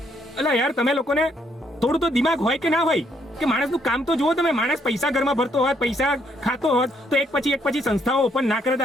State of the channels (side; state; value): both; normal; correlation 0.71